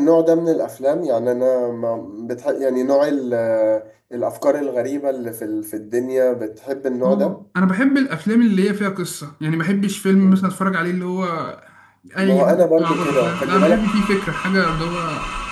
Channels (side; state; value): both; identical; correlation 1.00